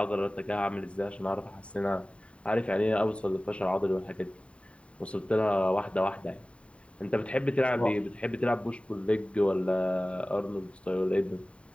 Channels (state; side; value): late; right; 0.061 ms